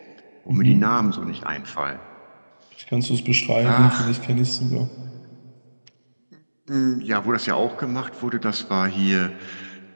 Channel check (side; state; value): both; inverted; correlation -1.00